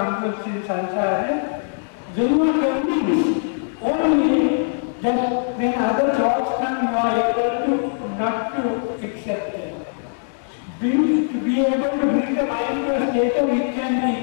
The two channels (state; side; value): silent; right; digital silence